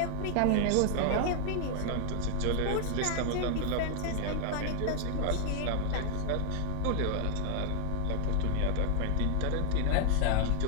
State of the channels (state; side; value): different; both; correlation 0.00